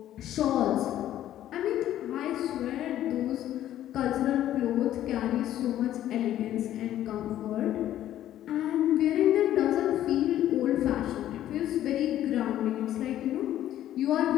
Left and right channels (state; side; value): quieter; right; 12.4 dB